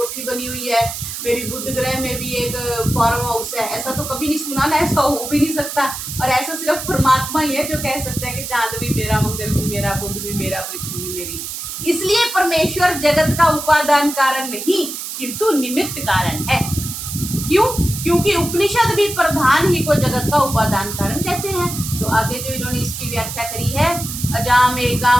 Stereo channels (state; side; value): noise; right; hiss, 7 dB below the sound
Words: बनी हुई है, मेरी बुध ग्रह में भी एक फार्म हाउस है, ऐसा तो कभी नहीं सुना ना, ऐसा हो भी नहीं सकता। और ऐसा सिर्फ परमात्मा ही है जो कह सकता है कि चांद भी मेरा, मंगल भी मेरा, बुध भी मेरा, पृथ्वी भी मेरी। इसलिए परमेश्वर जगत का उपादान कारण नहीं किंतु निमित्त कारण है। क्यों? क्योंकि उपनिषद भी प्रधान ही को जगत का उपादान कारण कहते हैं। तो आगे जो इन्होंने इसकी व्याख्या करी है, अजाम